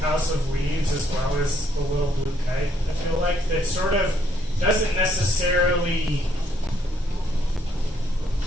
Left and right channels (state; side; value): normal; both; correlation 0.70